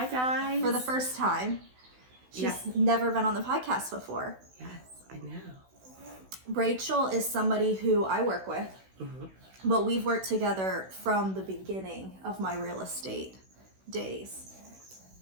guys. for the first time. She's never been on the podcast before. Yes, I know. Rachel is somebody who I work with, but we've worked together from the beginning of my real estate days.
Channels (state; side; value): late; left; 16 ms